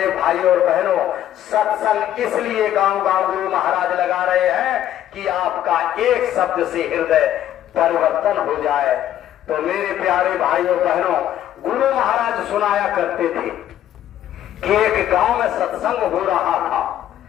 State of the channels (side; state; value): right; quieter; 11.7 dB